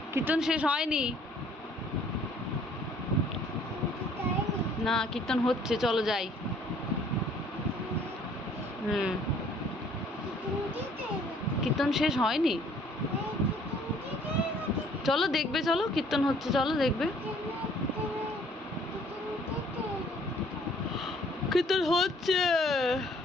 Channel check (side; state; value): both; normal; correlation 0.58